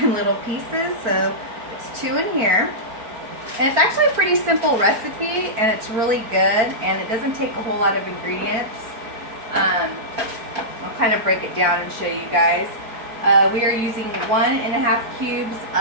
in little pieces. So it's 2 in here. And it's actually a pretty simple recipe, and it's really good, and it doesn't take a whole lot of ingredients. I'll kind of break it down and show you guys. We are using 1.5 cubes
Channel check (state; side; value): late; left; 4.5 ms